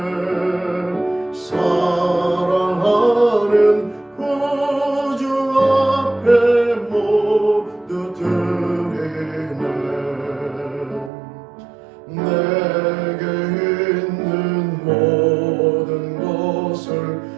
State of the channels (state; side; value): drops out; left; at 11.1 s